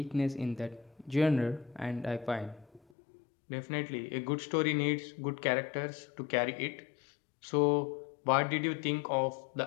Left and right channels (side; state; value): right; drops out; at 2.8 s